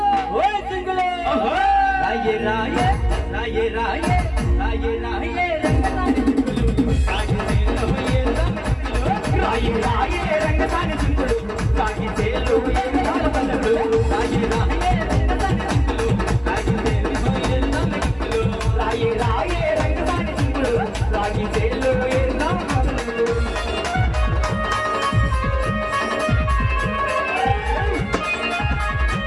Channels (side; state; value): both; identical; correlation 1.00